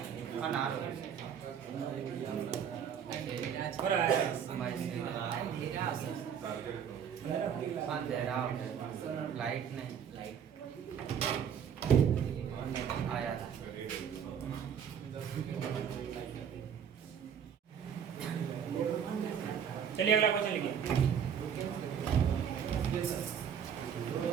लाइट नहीं, लाइट आया था। चलिए अगला क्वेश्चन लिखिए।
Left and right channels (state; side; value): quieter; left; 8.0 dB